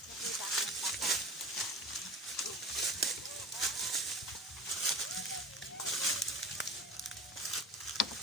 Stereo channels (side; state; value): both; normal; correlation 0.36